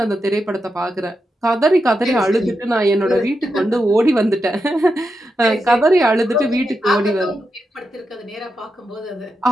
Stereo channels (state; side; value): normal; both; correlation 0.87